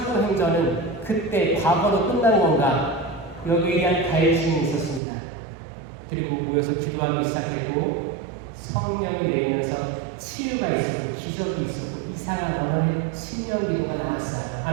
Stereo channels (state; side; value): drops out; left; at 5.0 s